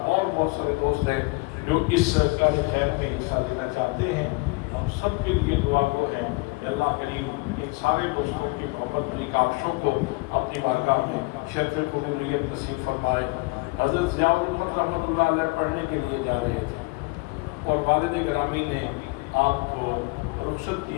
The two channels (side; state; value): right; quieter; 26.8 dB